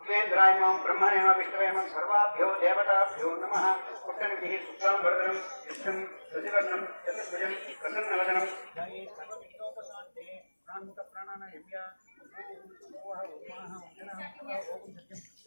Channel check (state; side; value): inverted; both; correlation -1.00